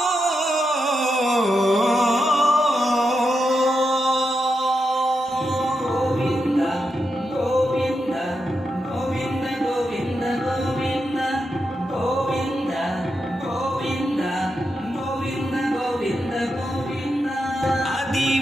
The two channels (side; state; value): both; normal; correlation 0.86